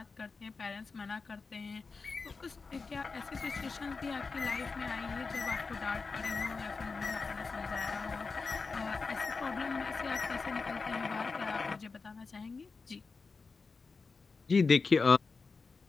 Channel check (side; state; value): right; quieter; 4.5 dB